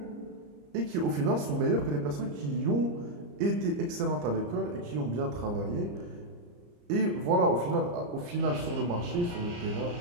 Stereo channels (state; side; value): late; left; 34 ms